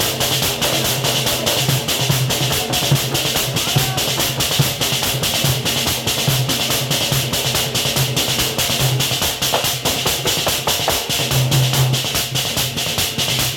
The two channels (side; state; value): both; identical; correlation 1.00